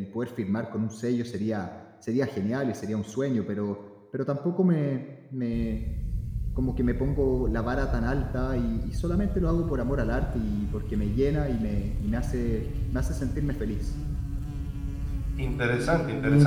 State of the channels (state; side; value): identical; both; correlation 1.00